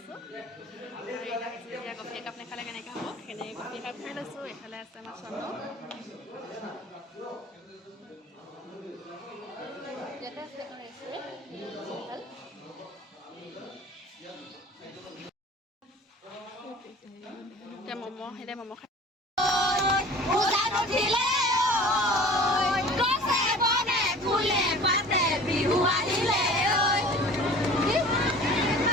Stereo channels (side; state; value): both; normal; correlation 0.43